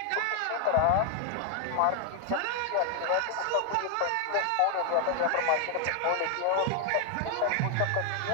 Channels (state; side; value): different; both; correlation 0.00